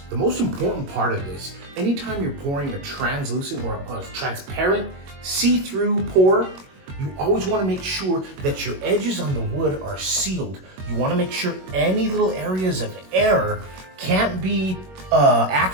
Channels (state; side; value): late; left; 21 ms